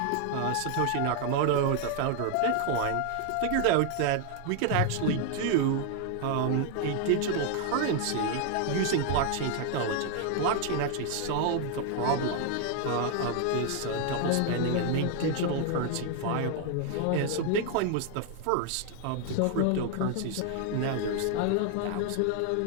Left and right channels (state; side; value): different; both; correlation 0.00